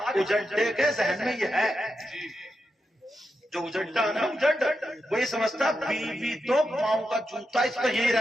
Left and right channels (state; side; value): normal; both; correlation 0.87